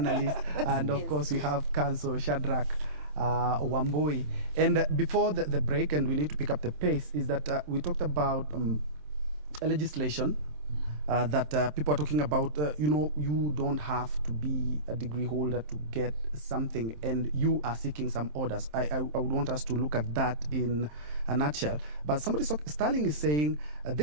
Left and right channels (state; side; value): late; left; 27 ms